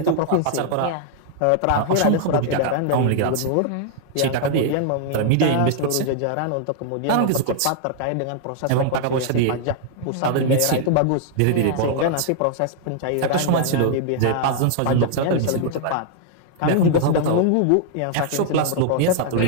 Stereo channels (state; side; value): different; both; correlation -0.01